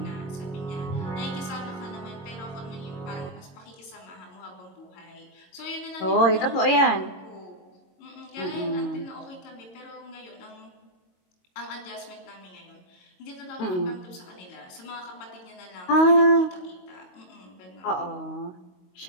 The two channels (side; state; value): right; late; 22 ms